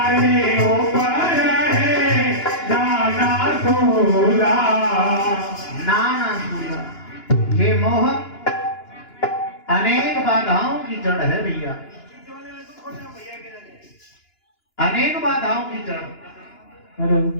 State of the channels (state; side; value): late; right; 2.9 ms